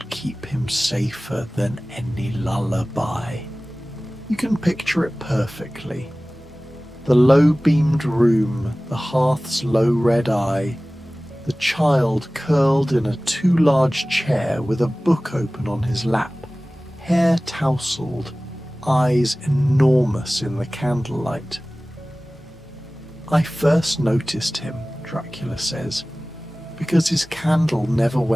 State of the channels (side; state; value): both; normal; correlation 0.98